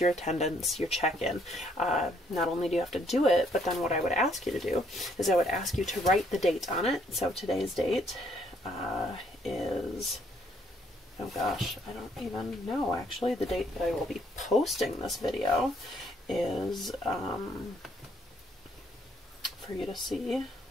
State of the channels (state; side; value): normal; both; correlation 0.68